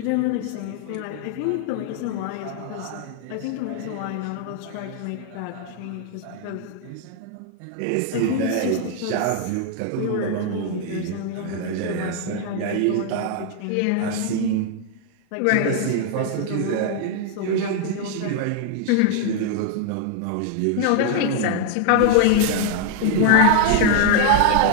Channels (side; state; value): both; different; correlation 0.00